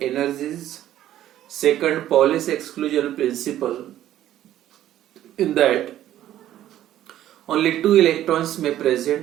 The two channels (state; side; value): quieter; left; 12.5 dB